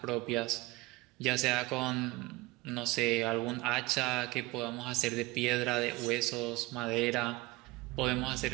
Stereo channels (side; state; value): left; quieter; 21.4 dB